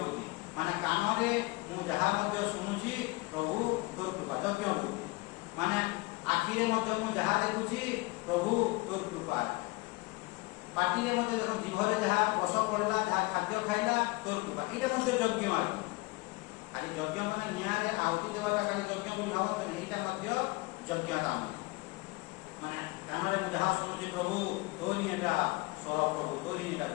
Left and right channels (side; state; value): right; quieter; 23.5 dB